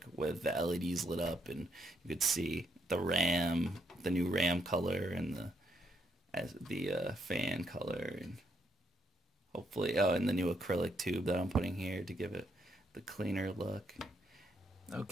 with the LEDs lit up, and you could see the RAM, the new RAM color, and the fan color, and hopefully, and the new acrylic tube that I'm putting here to give it the cleaner look.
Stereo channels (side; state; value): both; normal; correlation 0.76